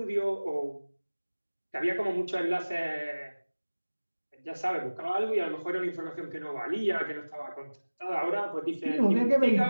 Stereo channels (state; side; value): inverted; both; correlation -1.00